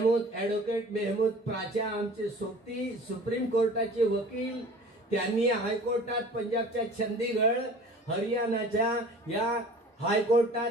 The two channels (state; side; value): normal; both; correlation 0.44